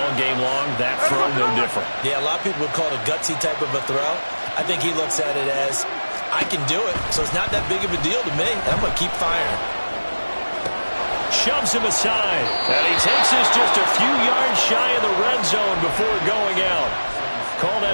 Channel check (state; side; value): inverted; both; correlation -1.00